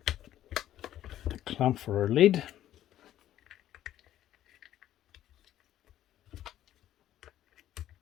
the clamp for our lead.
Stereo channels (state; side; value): quieter; right; 12.5 dB